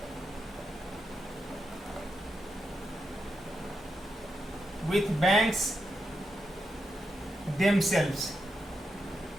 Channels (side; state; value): both; normal; correlation 0.85